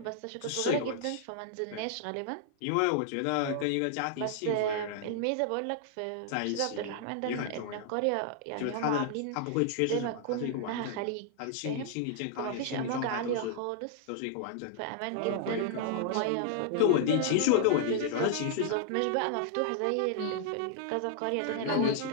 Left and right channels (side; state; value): both; different; correlation -0.01